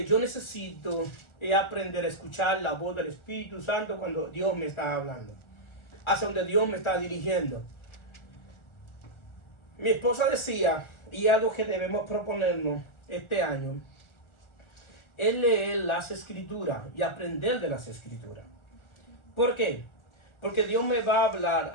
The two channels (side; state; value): right; late; 1.4 ms